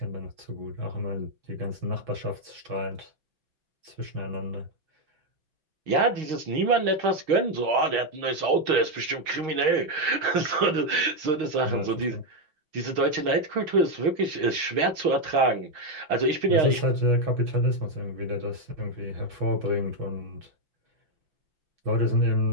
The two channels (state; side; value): late; left; 6.4 ms